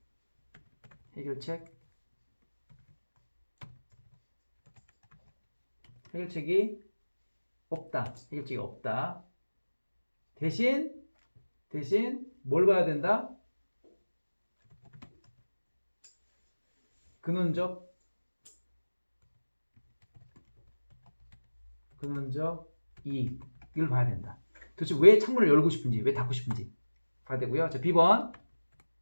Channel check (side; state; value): both; inverted; correlation -1.00